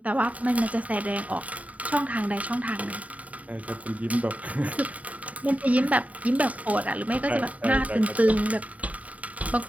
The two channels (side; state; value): left; late; 0.070 ms